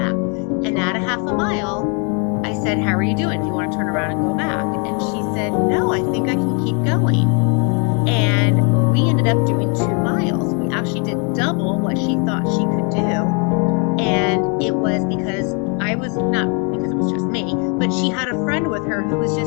And at a half a mile, I said, how are you doing? Do you want to turn around and go back? And she said, no, I think I can keep going. And we ended up doing 2 miles. We actually did double what she thought she could do. And it was because not because it was just me, but she had a friend with her who was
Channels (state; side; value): quieter; right; 36.5 dB